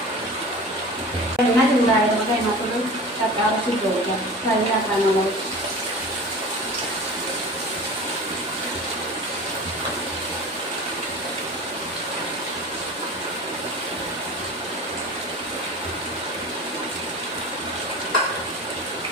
എണ്ണ ചൂടായത് നമുക്ക് അതിനകത്തോട് കക്കാറച്ചി ഇട്ട് കൊടുക്കാം. ഫ്രൈ ആക്കാനുള്ളത്.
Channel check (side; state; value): both; normal; correlation 0.36